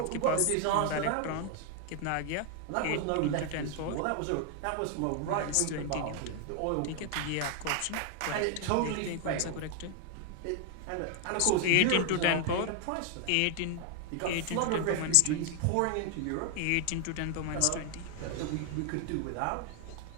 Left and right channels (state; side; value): different; both; correlation 0.00